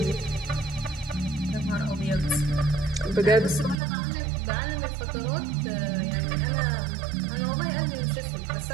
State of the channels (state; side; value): drops out; left; at 3.8 s